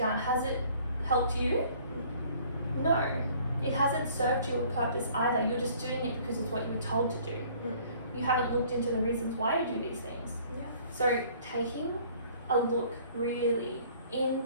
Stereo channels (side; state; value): both; inverted; correlation -0.55